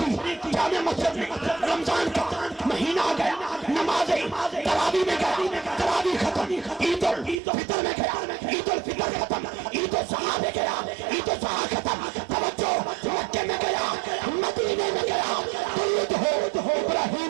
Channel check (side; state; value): left; drops out; at 7.4 s